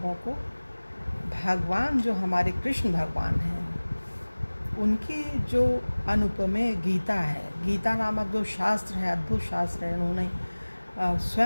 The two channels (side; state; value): both; inverted; correlation -1.00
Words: को भगवान जो हमारे कृष्ण भगवान हैं उनकी जो अनुपमेय गीता है, गीता नामक जो शास्त्र है, अद्भुत शास्त्र है, उन्होंने